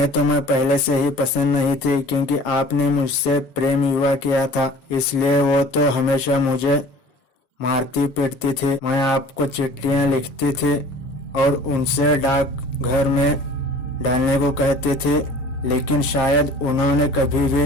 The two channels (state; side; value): late; right; 7.5 ms